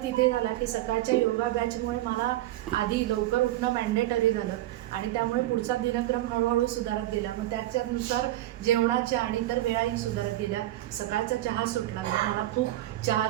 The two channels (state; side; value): quieter; left; 15.2 dB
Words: तिथे झाला की सकाळच्या योगा बॅचमुळे मला आधी लवकर उठणं मॅन्डेटरी झालं आणि त्यामुळे पुढचा दिनक्रम हळूहळू सुधारत गेला. मग त्याच्यानुसार जेवणाच्या आणि इतर वेळाही सुधारत गेल्या. सकाळचा चहा सुटला, मला खूप